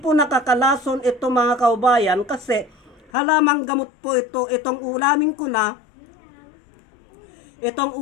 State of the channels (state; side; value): drops out; right; at 3.1 s